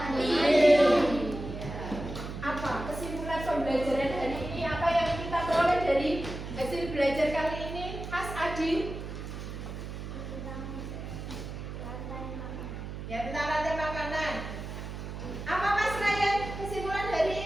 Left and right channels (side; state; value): right; noise; hum, 8 dB below the sound